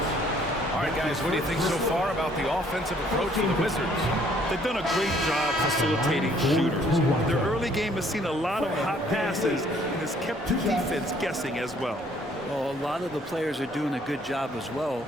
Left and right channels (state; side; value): normal; both; correlation 0.62